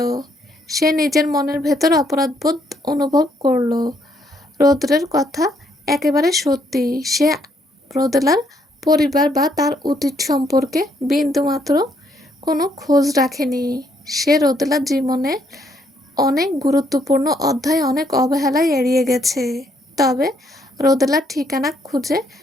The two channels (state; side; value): normal; both; correlation 0.71